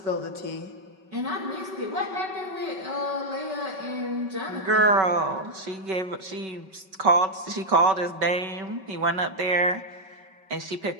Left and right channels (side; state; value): left; late; 5.3 ms